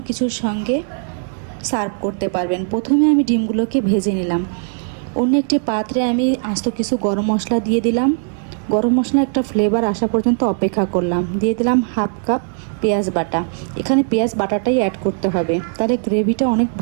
কিছুর সঙ্গে সার্ভ করতে পারবেন। প্রথমে আমি ডিমগুলোকে ভেজে নিলাম। অন্য একটি পাত্রে আমি আস্ত কিছু গরম মশলা দিয়ে দিলাম। গরম মশলা একটা ফ্লেভার আসা পর্যন্ত অপেক্ষা করলাম। দিয়ে দিলাম হাফ কাপ পেঁয়াজ বাটা। এখানে পেঁয়াজ বাটাটাই অ্যাড করতে হবে, তাহলে গ্রেভিটা অনেক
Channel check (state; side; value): silent; left; digital silence